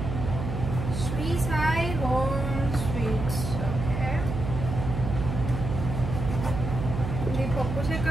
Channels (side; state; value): right; noise; hum, 4 dB below the sound